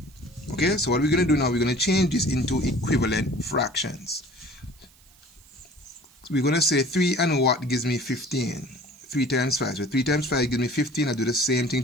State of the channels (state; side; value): noise; right; hiss, 28 dB below the sound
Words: Okay, so what we're going to do now, we're going to change this into equivalent fractions. So we're going to say 3 and what gives me 15? 3 times 5. So 3 times 5 gives me 15. I do the same thing